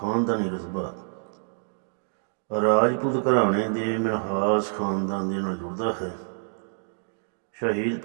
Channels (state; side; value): silent; left; digital silence